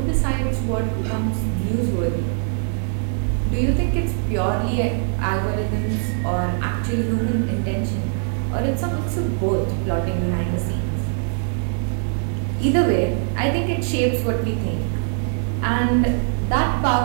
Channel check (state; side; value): silent; left; 64 dB below the other